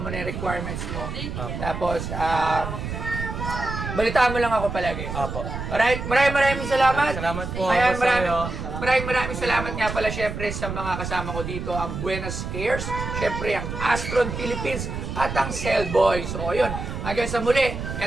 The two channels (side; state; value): right; noise; rumble, 6 dB below the sound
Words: na yung requirements mo. Tapos, balitaan mo lang ako palagi. Apo. Alright, maraming salamat. Salamat po. Ayan, Boss Ayo. maraming salamat nga pala syempre sa mga kasama ko dito, ang Buenos Cares, syempre ang Astron Philippines at ang Cellboy. So, ayun, hanggang sa muli,